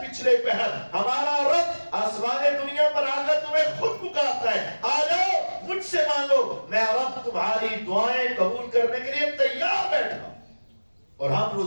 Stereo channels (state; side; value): inverted; both; correlation -1.00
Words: پچھلے پہر ہمارا رب آسمان دنیا پر آ کر تمہیں خود پکارتا ہے، آ جاؤ مجھ سے مانگو، میں رب تمہاری دعائیں قبول کرنے کے لیے تیار بیٹھا ہوں۔ اور ہم